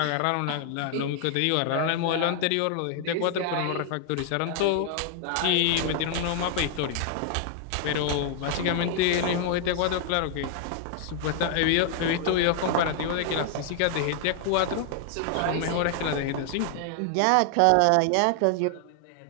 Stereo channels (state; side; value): different; both; correlation 0.00